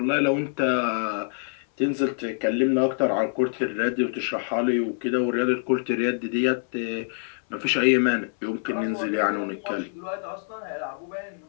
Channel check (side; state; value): right; silent; 61 dB below the other